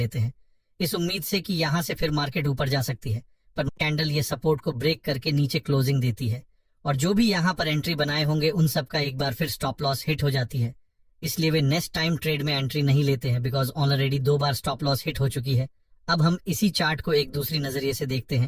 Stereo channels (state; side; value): identical; both; correlation 1.00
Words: हैं, इस उम्मीद से कि यहाँ से फिर मार्केट ऊपर जा सकती है। पर कैंडल ये सपोर्ट को ब्रेक करके नीचे क्लोजिंग देती है और जो भी यहाँ पर एंट्री बनाए होंगे उन सबका एक बार फिर स्टॉप लॉस हिट हो जाती है। इसलिए वे नेक्स्ट टाइम ट्रेड में एंट्री नहीं लेते हैं, because already 2 bar stop loss hit हो चुकी है। अब हम इसी चार्ट को एक दूसरी नजरिए से देखते हैं,